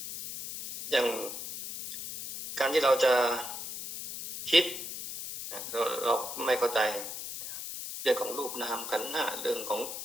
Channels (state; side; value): noise; left; hiss, 8 dB below the sound